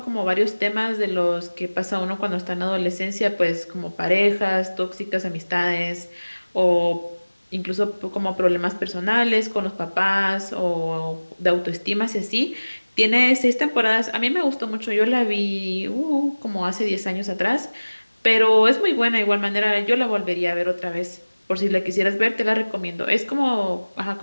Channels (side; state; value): both; inverted; correlation -1.00